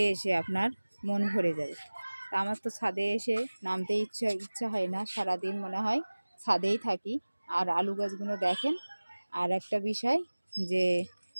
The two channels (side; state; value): both; inverted; correlation -1.00